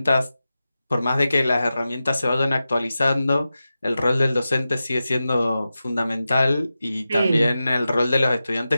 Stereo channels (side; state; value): both; inverted; correlation -0.93